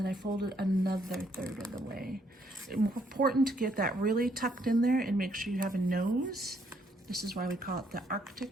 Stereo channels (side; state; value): both; normal; correlation 0.70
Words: I fold it another third of the way. It's important to get that really tucked in there and make sure you have a nose. This is why we call it the